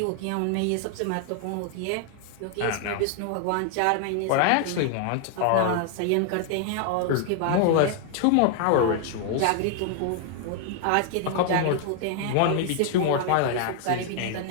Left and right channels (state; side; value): different; both; correlation 0.00